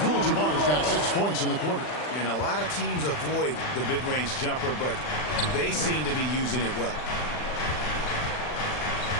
got 6 points in the quarter. And a lot of teams avoid the mid-range jumper, but they seem to be using it well.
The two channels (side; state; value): right; late; 40 ms